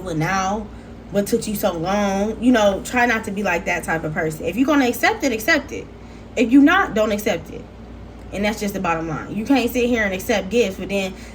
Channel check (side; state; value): both; identical; correlation 1.00